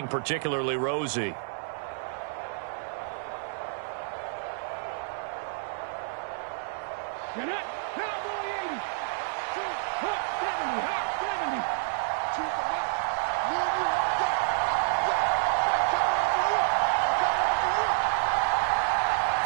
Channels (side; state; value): left; silent; 59 dB below the other